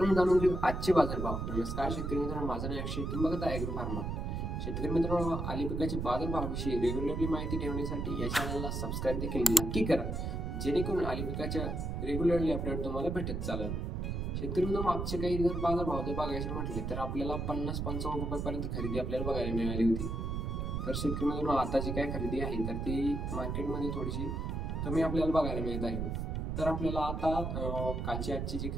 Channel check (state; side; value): noise; right; rumble, 2 dB below the sound